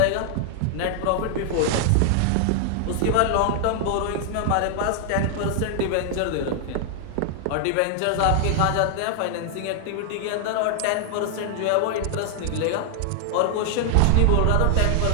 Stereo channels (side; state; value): both; different; correlation 0.00